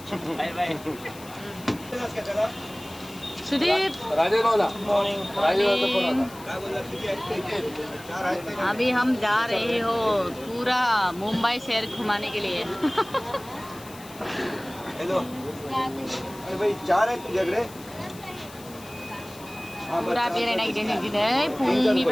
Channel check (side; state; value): left; noise; hiss, 19 dB below the sound